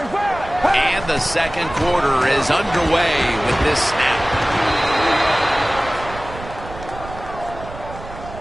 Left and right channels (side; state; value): right; noise; rumble, 14 dB below the sound